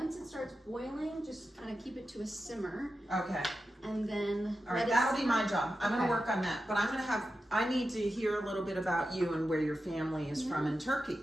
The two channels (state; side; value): normal; both; correlation 0.91